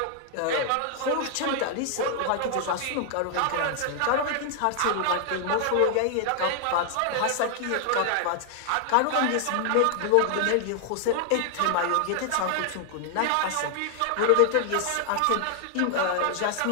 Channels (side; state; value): both; different; correlation 0.00